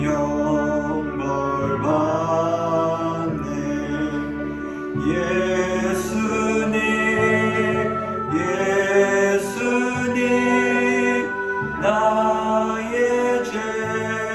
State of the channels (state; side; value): noise; left; rumble, 28 dB below the sound